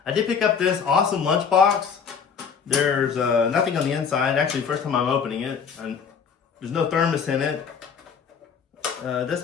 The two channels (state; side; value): quieter; right; 6.5 dB